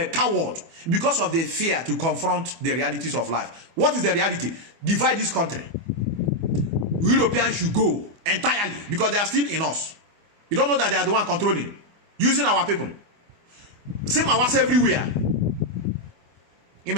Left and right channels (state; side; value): late; left; 24 ms